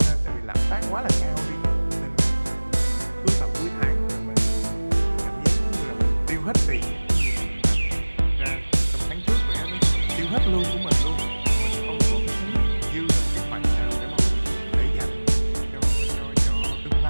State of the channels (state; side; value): inverted; both; correlation -1.00